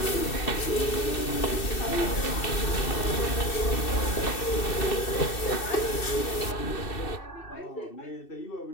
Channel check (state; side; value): late; right; 2.6 ms